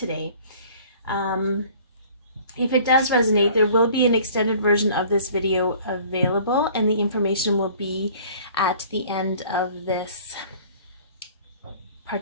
If it does resonate, there will be an extended version of this video available, and the information will be at the end of this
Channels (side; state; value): both; inverted; correlation -0.50